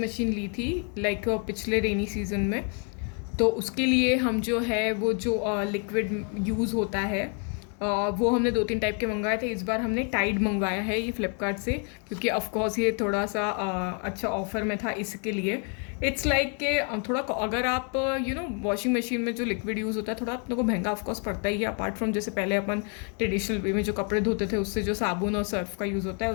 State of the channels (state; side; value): quieter; right; 39.7 dB